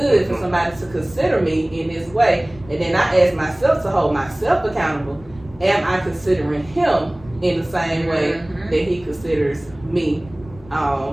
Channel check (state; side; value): noise; left; rumble, 22 dB below the sound